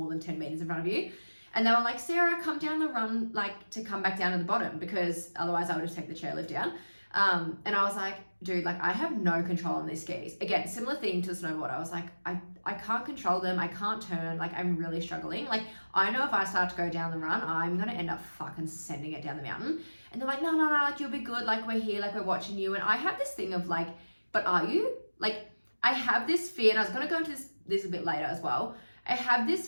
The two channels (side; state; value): both; inverted; correlation -1.00